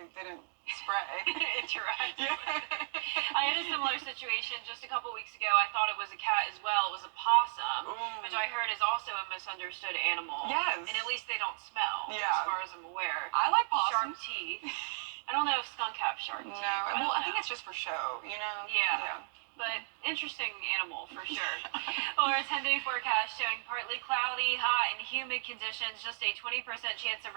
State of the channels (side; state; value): left; silent; digital silence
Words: didn't spray. Interact. Yeah. I had a similar situation just a couple weeks ago. I thought it was a cat as well. It was a possum, which I heard is also a misunderstood animal. Yes. And at least they don't smell, Yeah. as far as I'm aware. I like Sharp possums. teeth. I don't know if skunk have sharp teeth. No. I Well, I don't think know. it's just for show, you know? Yeah. But interesting animal for sure. Well, our 10-day forecast showing partly cloudy, hot, and humid conditions. Just a 20% chance of